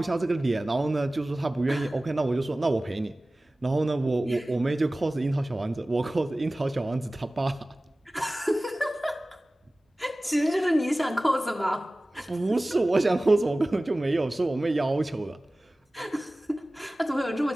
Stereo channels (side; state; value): both; normal; correlation 0.97